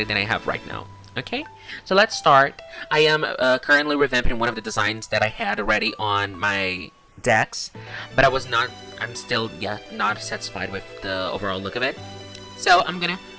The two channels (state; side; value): identical; both; correlation 1.00